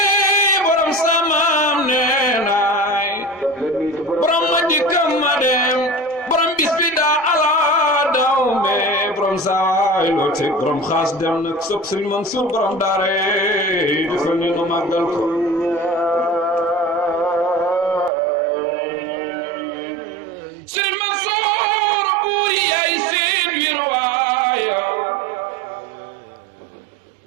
borom samaam nee naay borom ma dikkam ma dem borom bis bi daa ala daw me borom saay loo teg borom xaas dem nag sopp Serigne Mansour borom daare defal ñu nu màggal ko Serigne Mansour buur yaay seen wirwaaya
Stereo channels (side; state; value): left; drops out; at 18.1 s